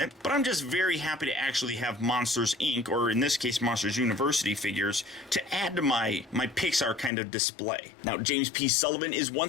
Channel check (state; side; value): drops out; right; at 7.1 s